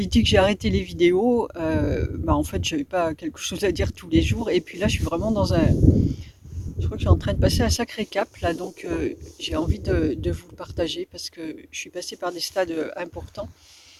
dit que j'ai arrêté les vidéos. En fait, j'avais pas quelque chose à dire tous les jours. Et puis là, je suis vraiment dans un. Je crois que je suis en train de passer un sacré cap là, donc j'ai envie de vous le partager parce que je suis passée par des stades importants.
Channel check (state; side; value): identical; both; correlation 1.00